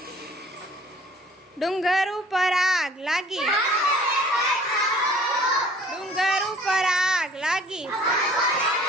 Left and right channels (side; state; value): both; normal; correlation 0.52